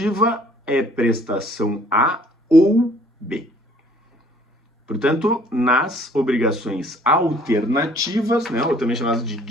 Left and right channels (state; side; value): normal; both; correlation 0.57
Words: é prestação A ou B. Portanto, nas obrigações alternativas, né, ou também chamadas de